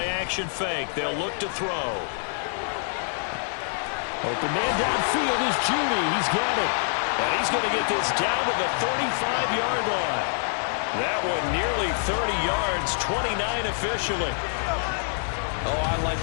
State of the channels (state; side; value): silent; right; digital silence